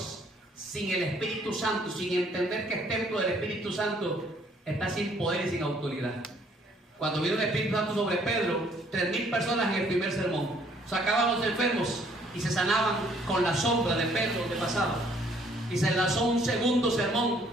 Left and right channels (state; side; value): normal; both; correlation 0.63